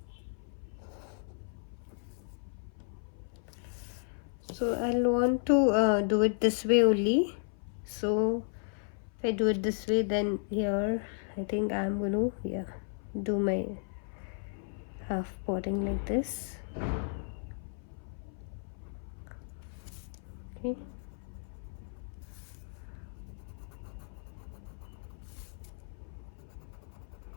So I'll want to do it this way only. So if I do it this way, then here I think I'm going to do my half potting like this. Okay.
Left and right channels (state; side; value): silent; right; 55 dB below the other